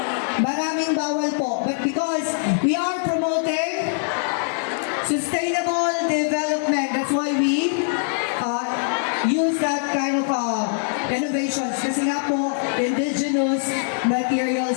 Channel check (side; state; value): right; silent; digital silence